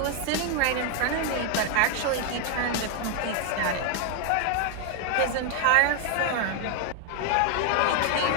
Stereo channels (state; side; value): different; both; correlation 0.01